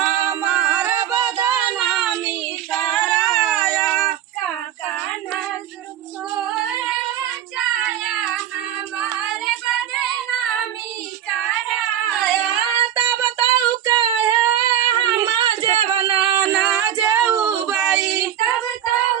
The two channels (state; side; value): quieter; left; 10.6 dB